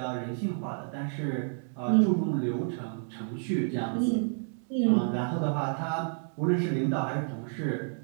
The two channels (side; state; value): left; silent; digital silence